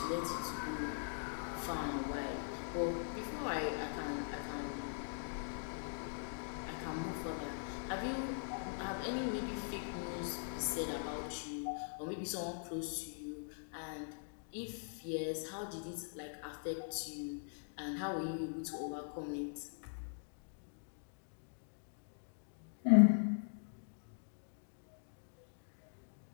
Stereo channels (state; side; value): silent; right; digital silence